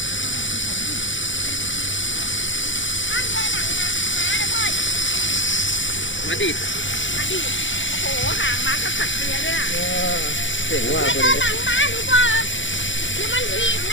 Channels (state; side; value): late; right; 0.55 ms